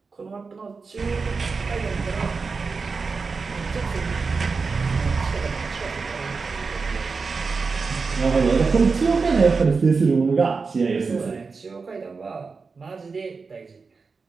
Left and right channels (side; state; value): left; quieter; 4.6 dB